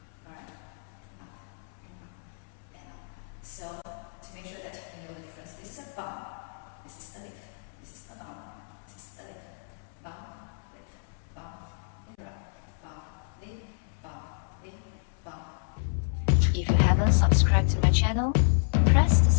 Alright? Up and up and up. So to make sure that you know the difference, this is a bump. This is a lift. This is a bump. This is a lift. Bump, lift, bump, lift, bump, lift, bump, lift, bump. If you haven't subscribed to my channel, press the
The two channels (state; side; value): silent; right; 58 dB below the other